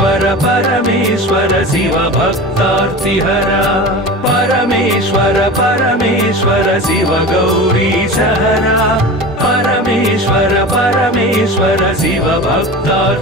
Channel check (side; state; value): both; normal; correlation 0.32